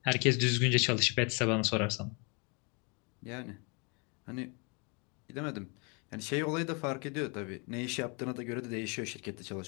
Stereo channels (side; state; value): right; quieter; 32.6 dB